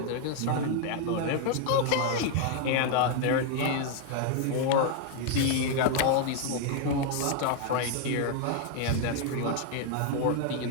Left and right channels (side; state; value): both; different; correlation 0.00